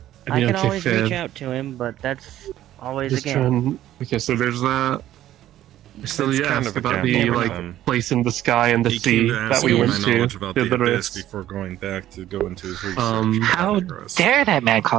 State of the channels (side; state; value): left; quieter; 13.0 dB